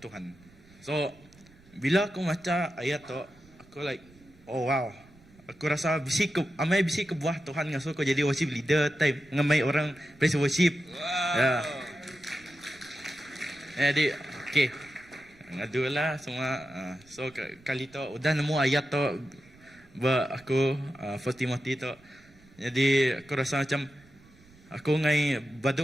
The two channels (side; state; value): right; noise; rumble, 26 dB below the sound